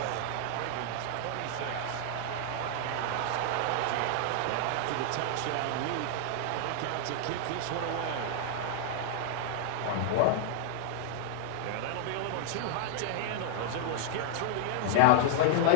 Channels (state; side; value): different; both; correlation -0.01